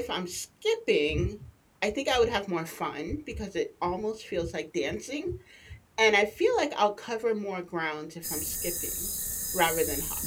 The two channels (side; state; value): both; identical; correlation 1.00